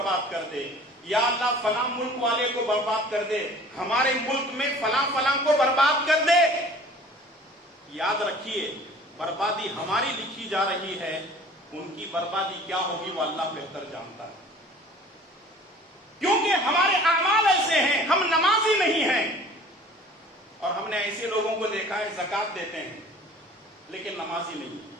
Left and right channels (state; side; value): normal; both; correlation 0.47